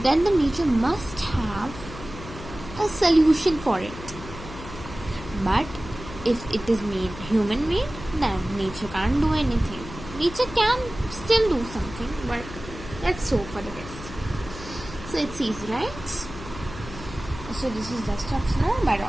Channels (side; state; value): left; noise; hum, 13 dB below the sound